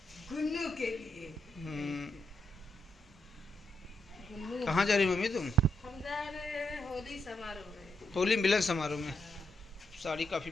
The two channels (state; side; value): normal; both; correlation 0.80